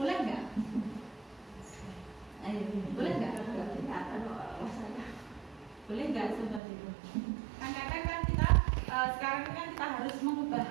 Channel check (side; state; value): left; drops out; at 6.6 s